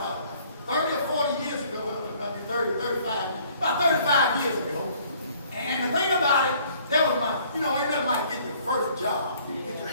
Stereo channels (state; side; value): inverted; both; correlation -0.58